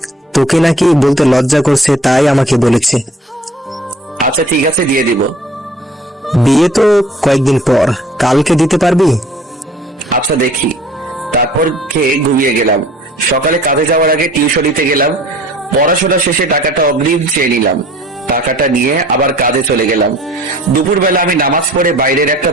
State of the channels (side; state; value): both; normal; correlation 0.51